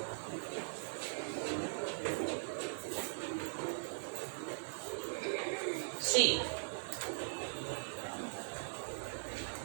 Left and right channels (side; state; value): left; silent; 51 dB below the other